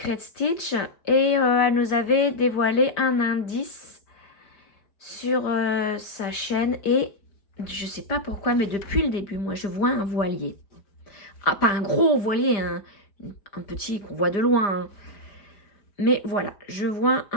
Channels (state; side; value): late; right; 5.1 ms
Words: Stitch, et elle nous avait dévoilé un indice sur sa chaîne, et je sais pas pourquoi, mais depuis le début, moi je vois un voilier. Ah, pas un gros voilier, un petit qu'on voit de loin, hein. Mais voilà, je vois